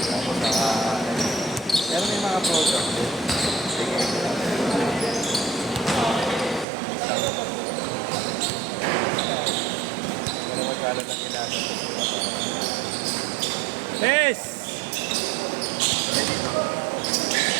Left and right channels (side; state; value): left; drops out; at 6.7 s